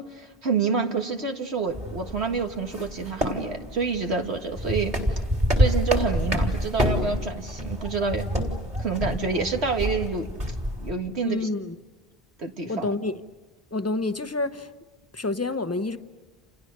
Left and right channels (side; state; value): both; normal; correlation 0.34